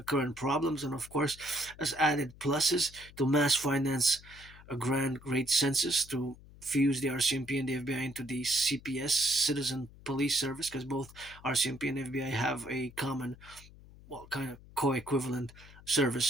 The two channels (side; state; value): left; noise; hum, 21 dB below the sound